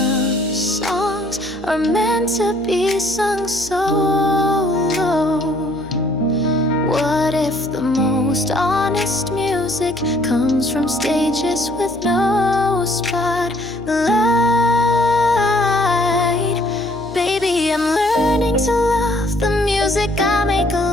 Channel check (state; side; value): noise; left; hum, 19 dB below the sound